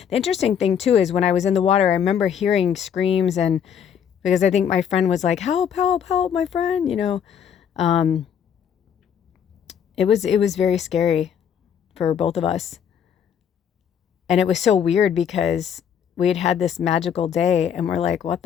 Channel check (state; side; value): quieter; right; 8.2 dB